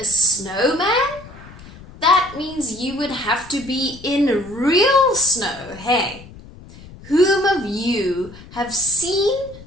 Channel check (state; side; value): noise; left; rumble, 19 dB below the sound